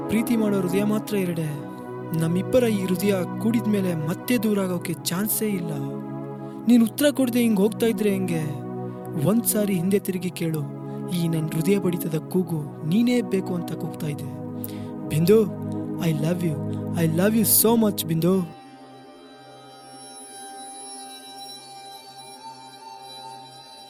ಪ್ರೀತಿ ಮಾಡೋ ಹೃದಯ ಮಾತ್ರ ಎರಡೆ. ನಮ್ಮಿಬ್ಬರ ಈ ಹೃದಯ ಕೂಡಿದ್ಮೇಲೆ ಮತ್ತೆ ದೂರ ಆಗೋಕೆ ಚಾನ್ಸೇ ಇಲ್ಲ. ನೀನು ಉತ್ತರ ಕೊಡದೆ ಹಿಂಗೆ ಹೋಗ್ತಾ ಇದ್ರೆ ಹೆಂಗೆ? ಒಂದ್ಸಾರಿ ಹಿಂದೆ ತಿರುಗಿ ಕೇಳು, ಈ ನನ್ನ ಹೃದಯ ಬಡಿತದ ಕೂಗು ನೀನೇ ಬೇಕು ಅಂತ ಕೂಗ್ತಾ ಇದೆ. Bindu, I love you so much Bindu.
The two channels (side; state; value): both; identical; correlation 1.00